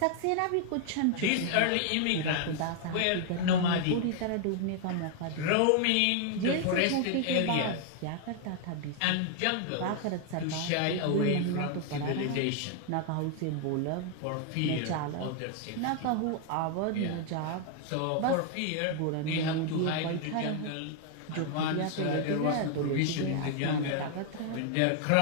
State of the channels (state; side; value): different; both; correlation 0.00